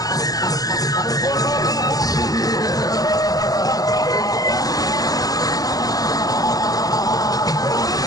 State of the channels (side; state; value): right; late; 0.18 ms